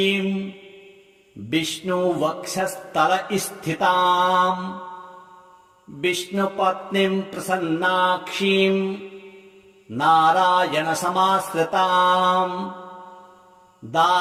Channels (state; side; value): identical; both; correlation 1.00